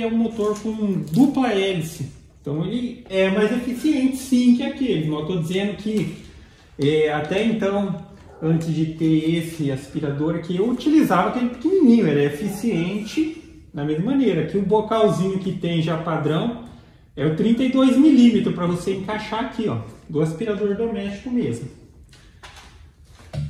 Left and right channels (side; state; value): both; identical; correlation 1.00